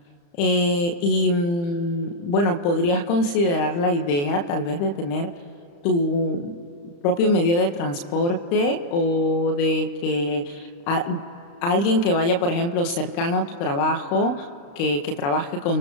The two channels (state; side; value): late; right; 35 ms